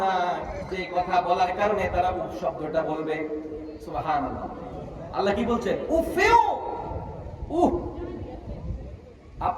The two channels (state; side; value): identical; both; correlation 1.00